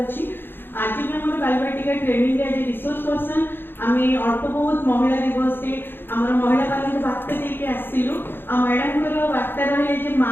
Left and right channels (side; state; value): right; late; 0.10 ms